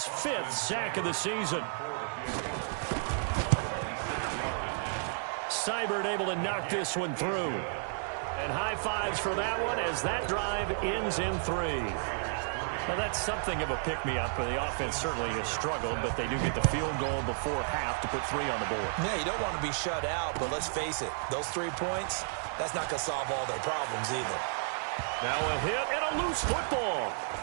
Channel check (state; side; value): silent; left; digital silence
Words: 5th sack of the season. Seibert able to knock this one through. And high fives for that one as that drive ends in 3. Now, that's something of a pick-me-up. The offense certainly has struggled, but they do get the field goal before half to put 3 on the board. Yeah, you don't want to be shut out, but let's face it, those 3 points, that's not going to solve all their problems either. Now a hit and a loose football.